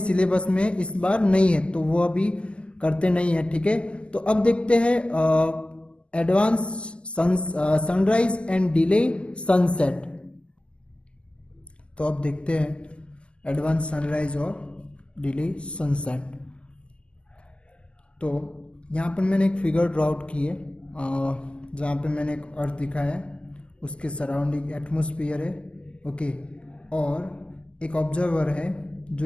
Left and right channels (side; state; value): right; late; 0.052 ms